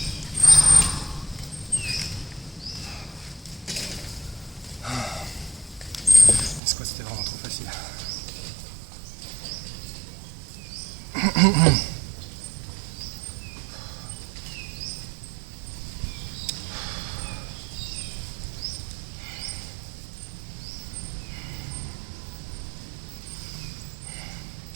Les squats c'était vraiment trop facile.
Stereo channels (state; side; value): drops out; left; at 6.6 s